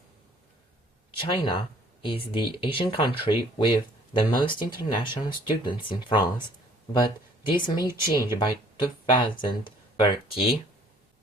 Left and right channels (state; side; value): normal; both; correlation 0.57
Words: China is the Asian country with the most international students in France, but this may change by 2030